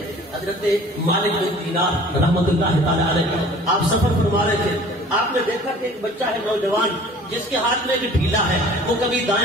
حضرت مالک بن دینار رحمت اللہ تعالی علیہ، آپ سفر فرما رہے تھے، آپ نے دیکھا کہ ایک بچہ ہے نوجوان جس کے ہاتھ میں ایک ڈھیلا ہے، وہ کبھی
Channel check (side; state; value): both; normal; correlation 0.47